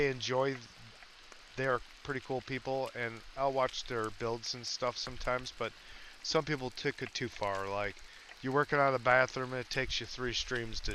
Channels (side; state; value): both; identical; correlation 1.00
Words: They're pretty cool people, and I'll watch their builds and stuff sometimes, but some people took it too far. Like, you're working on a bathroom and it takes you 3 streams to